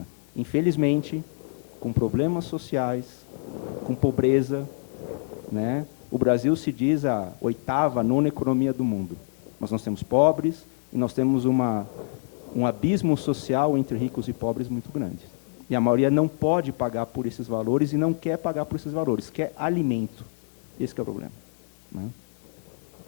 infelizmente, com problemas sociais, com pobreza, né? O Brasil se diz a oitava, nona economia do mundo. Mas nós temos pobres e nós temos um abismo social entre ricos e pobres muito grande. E a maioria não pode pagar por esses valores e não quer pagar por esses valores, quer alimento. Esse é o problema, ¿no?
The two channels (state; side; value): silent; right; digital silence